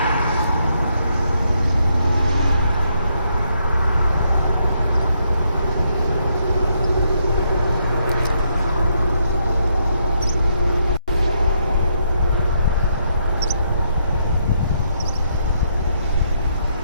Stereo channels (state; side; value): inverted; both; correlation -0.75